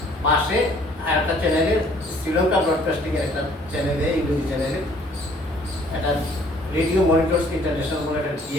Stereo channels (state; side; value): normal; both; correlation 0.58